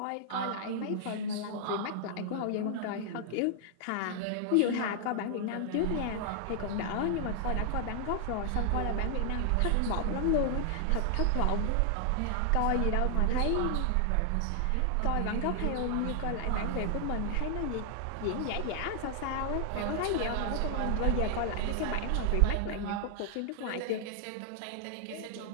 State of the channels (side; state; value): both; different; correlation 0.00